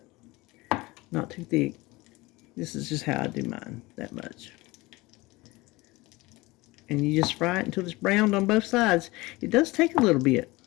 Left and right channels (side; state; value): right; quieter; 21.7 dB